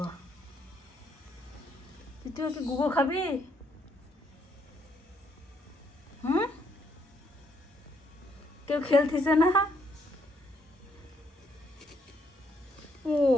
তুই কি গুগো খাবি? হুম, কেউ খেলতেছে না? ও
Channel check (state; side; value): normal; both; correlation 0.73